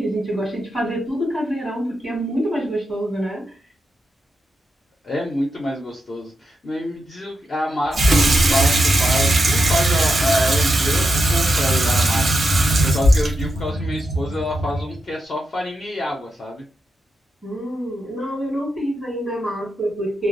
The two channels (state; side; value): normal; both; correlation 0.86